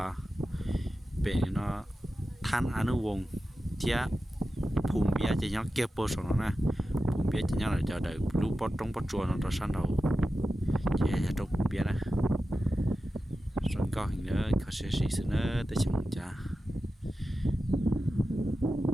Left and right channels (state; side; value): normal; both; correlation 0.92